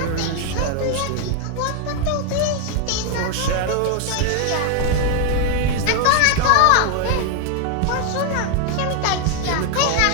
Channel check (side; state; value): both; different; correlation 0.00